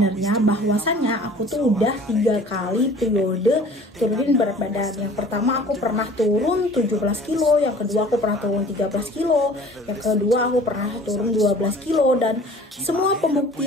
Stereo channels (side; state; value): both; normal; correlation 0.47